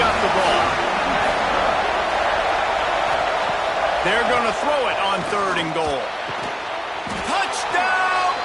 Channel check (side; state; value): both; identical; correlation 1.00